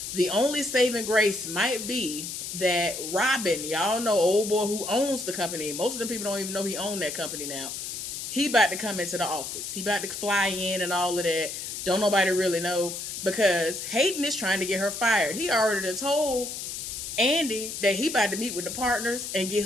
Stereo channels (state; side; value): noise; left; hiss, 6 dB below the sound